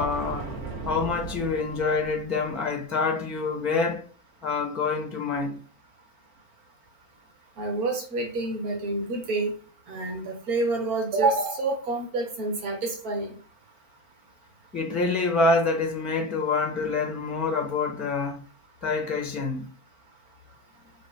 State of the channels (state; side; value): late; left; 4.4 ms